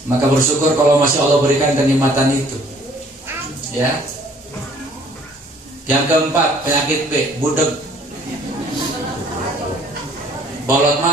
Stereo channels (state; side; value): normal; both; correlation 0.58